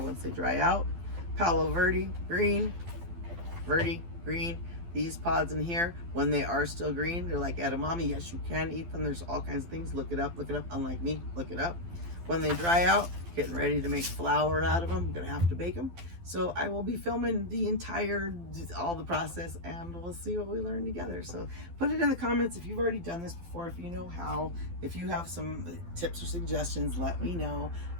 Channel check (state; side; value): late; left; 12 ms